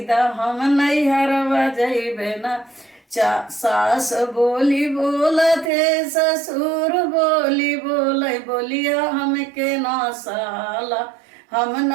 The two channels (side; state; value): left; drops out; at 5.7 s